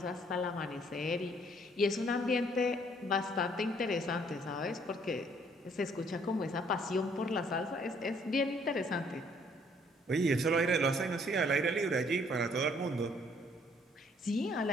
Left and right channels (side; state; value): both; normal; correlation 0.63